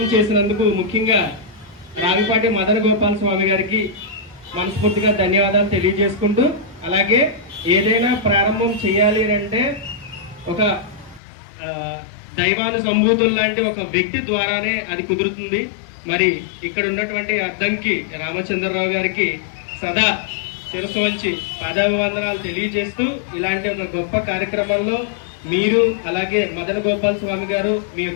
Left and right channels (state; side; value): drops out; right; at 11.2 s